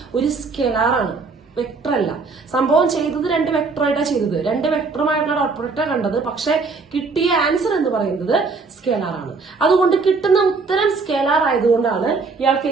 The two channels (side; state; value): left; quieter; 4.3 dB